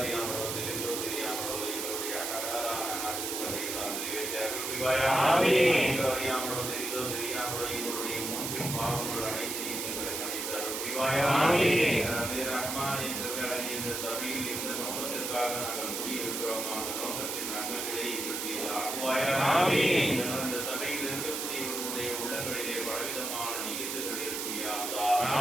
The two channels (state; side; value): noise; right; hiss, 3 dB below the sound